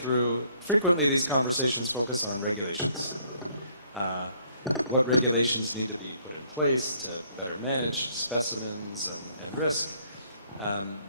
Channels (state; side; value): inverted; both; correlation -0.65